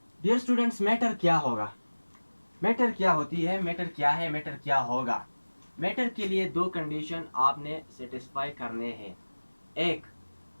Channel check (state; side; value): inverted; both; correlation -1.00